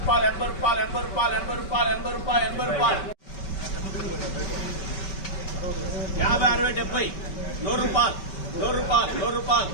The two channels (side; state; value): right; late; 5.2 ms